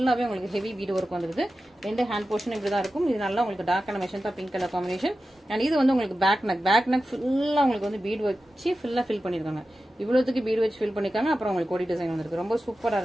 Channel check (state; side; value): normal; both; correlation 0.93